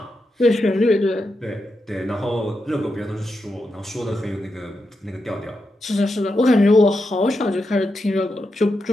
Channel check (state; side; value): normal; both; correlation 0.86